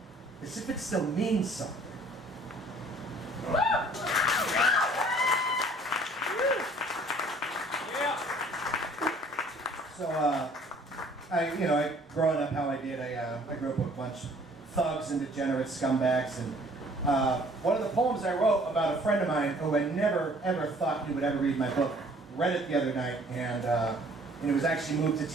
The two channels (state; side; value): normal; both; correlation 0.56